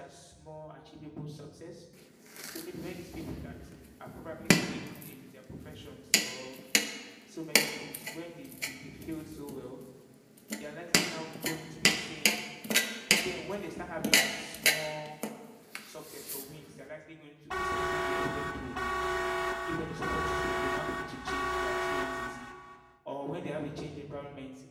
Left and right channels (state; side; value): identical; both; correlation 1.00